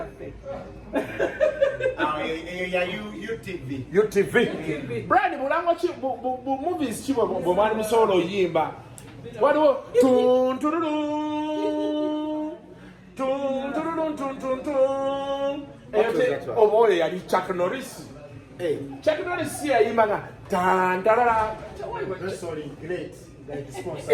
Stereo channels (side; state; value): both; identical; correlation 1.00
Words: UTV. Brian, mulango chi movies chi bo mali musolo yimba. Waliwo tun oh boy, yali Chuck Norris. Chuck Norris yayimba tan tarara. Sorry, great.